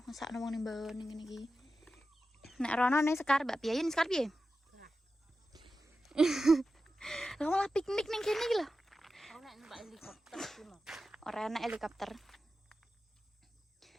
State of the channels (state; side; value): normal; both; correlation 0.92